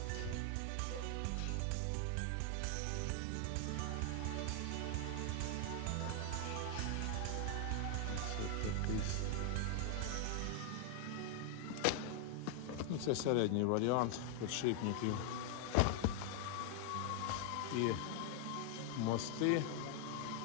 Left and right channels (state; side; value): different; both; correlation 0.00